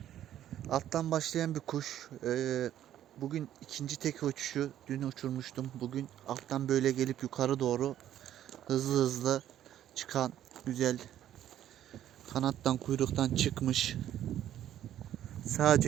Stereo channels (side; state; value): left; quieter; 11.5 dB